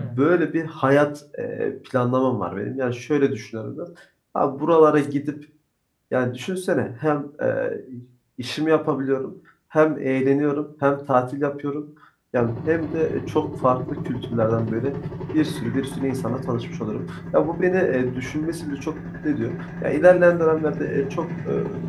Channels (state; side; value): identical; both; correlation 1.00